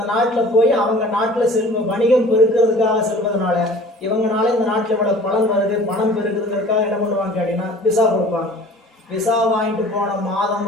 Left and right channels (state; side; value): normal; both; correlation 0.46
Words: நாட்டில் போய் அவங்க நாட்டில் வணிகம் பெருக்கிறதுக்காக செல்வதனால இவங்கனால இந்த நாட்டில் இவ்வளவு பலன் வருது, பணம் பெருக்குறதுக்காக என்ன பண்ணுவாங்க கேட்டீங்கன்னா விசா கொடுப்பாங்க. விசா வாங்கிட்டு போன மாதம்